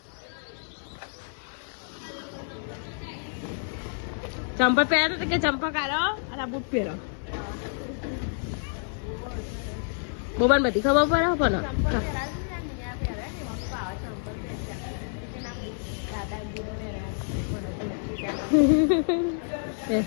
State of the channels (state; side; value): silent; right; 59 dB below the other